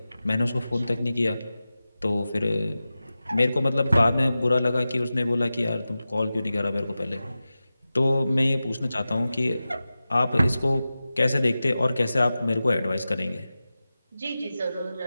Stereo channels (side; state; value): both; inverted; correlation -0.95